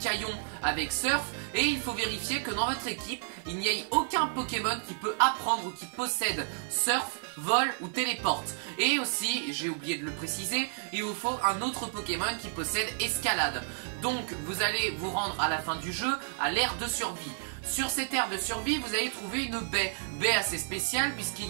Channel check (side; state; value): left; silent; 57 dB below the other